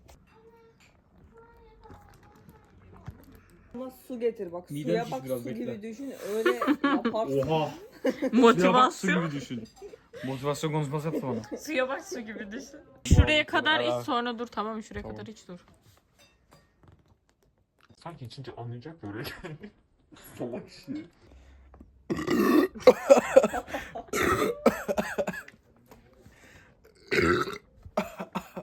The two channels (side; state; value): both; identical; correlation 1.00